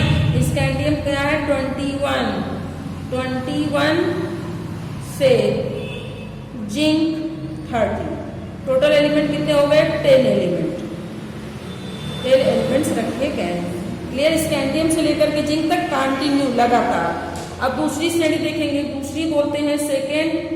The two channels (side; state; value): both; identical; correlation 1.00